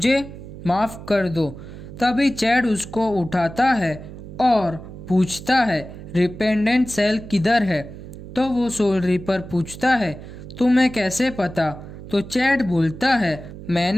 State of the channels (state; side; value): noise; right; hum, 13 dB below the sound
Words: माफ कर दो। तभी चैड उसको उठाता है और पूछता है, रिपेंडेंट सेल किधर है? तो वो सोल रिपर पूछता है, तुम्हें कैसे पता? तो चैड बोलता है,